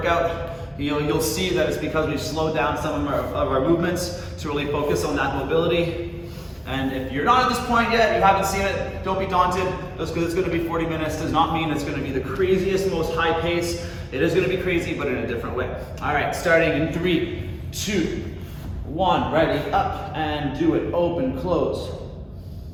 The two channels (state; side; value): identical; both; correlation 1.00